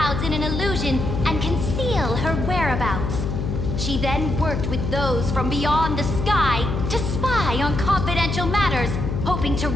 in an illusion and conceal her whereabouts. She then worked with those from beyond the sky to spy on confidential matters, hoping to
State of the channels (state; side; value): noise; left; hum, 2 dB below the sound